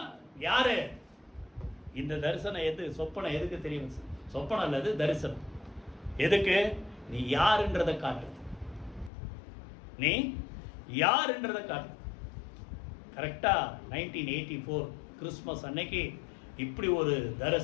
யாரு? இந்த தரிசனம் சொப்பனம் எதுக்கு தெரியும்? சொப்பனம் அல்லது தரிசனம் எதுக்கு? நீ யாருன்றதை காட்டு. நீ யாருன்றதை காட்டு. கரெக்டா 1984 கிறிஸ்மஸ் அன்னைக்கு இப்படி ஒரு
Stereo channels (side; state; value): right; drops out; at 9.1 s